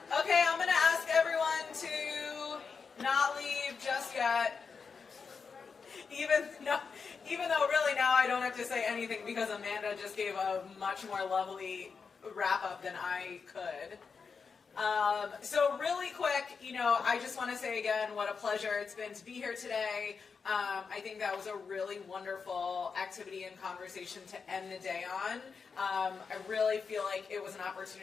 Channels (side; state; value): right; quieter; 5.4 dB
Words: Okay, I'm going to ask everyone to not leave just yet. Even though really now I don't have to say anything because Amanda just gave a much more lovely wrap-up than I could. So really quick, I just want to say again what a pleasure it's been to be here today. I think that was a really wonderful activity and conversation to end the day on. I really feel like it was an